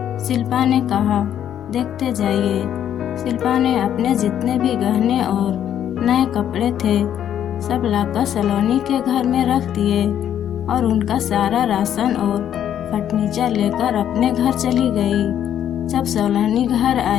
शिल्पा ने कहा, देखते जाइए। शिल्पा ने अपने जितने भी गहने और नए कपड़े थे सब लाकर सलोनी के घर में रख दिए और उनका सारा राशन और फर्नीचर लेकर अपने घर चली गई। जब सलोनी घर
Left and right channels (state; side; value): quieter; right; 10.1 dB